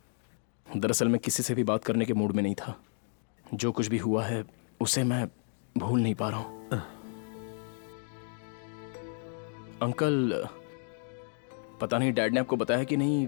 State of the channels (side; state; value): right; silent; 57 dB below the other